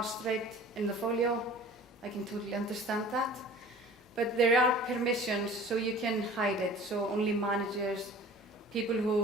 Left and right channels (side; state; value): both; normal; correlation 0.44